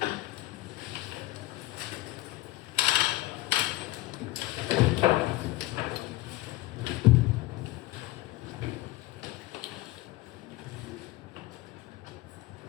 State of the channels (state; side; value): quieter; right; 18.5 dB